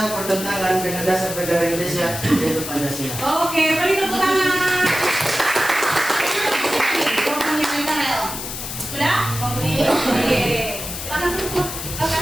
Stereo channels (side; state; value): left; noise; hiss, 7 dB below the sound